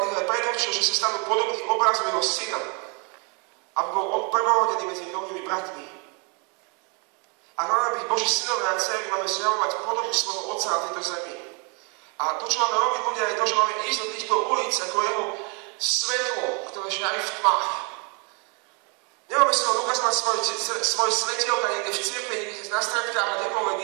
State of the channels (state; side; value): quieter; left; 34.0 dB